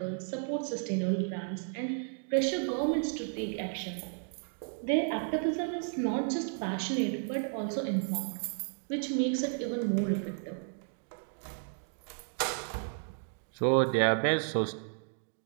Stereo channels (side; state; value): left; silent; 56 dB below the other